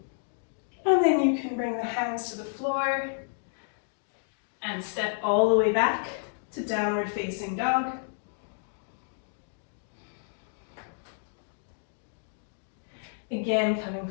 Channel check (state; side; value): silent; right; digital silence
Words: And then you can bring the hands to the floor and step all the way back to downward facing dog. Again, coming